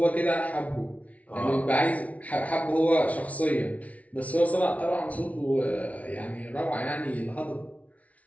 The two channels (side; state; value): right; late; 0.068 ms